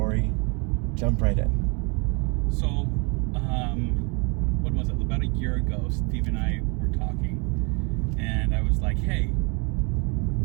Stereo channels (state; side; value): quieter; left; 32.3 dB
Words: jump right in. So, what was it? About a year ago, Steve and I were talking, and I was like, "Hey,